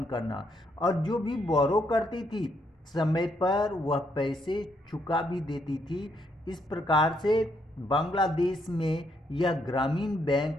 करना, और जो भी बोरो करती थी समय पर वह पैसे चुका भी देती थी। इस प्रकार से बांग्लादेश में यह ग्रामीण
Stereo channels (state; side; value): normal; both; correlation 0.74